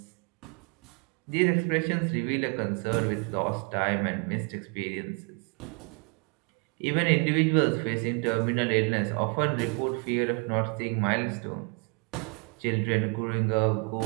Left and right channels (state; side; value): quieter; left; 33.8 dB